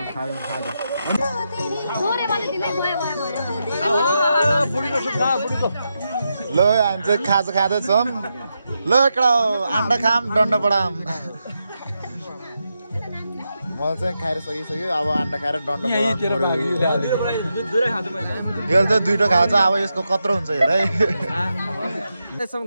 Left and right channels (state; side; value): inverted; both; correlation -0.86